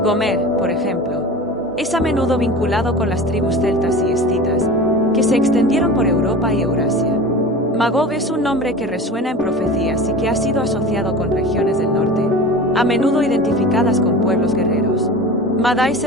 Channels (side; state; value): both; normal; correlation 0.34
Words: Gomer, por ejemplo, es a menudo vinculado con las tribus celtas y escitas, que se extendieron por Europa y Eurasia. Magog es un nombre que resuena en profecías y que ha sido asociado con regiones del norte, a menudo identificadas con pueblos guerreros. Madai